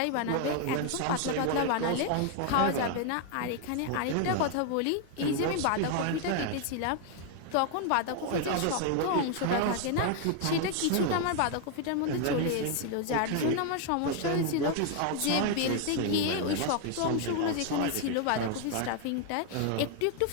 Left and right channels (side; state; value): both; different; correlation 0.00